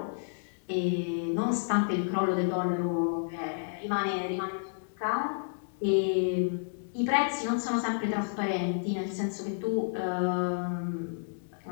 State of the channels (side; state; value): right; silent; digital silence